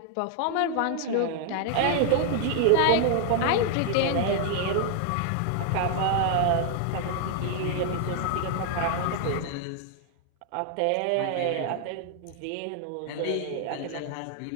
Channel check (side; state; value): both; different; correlation 0.00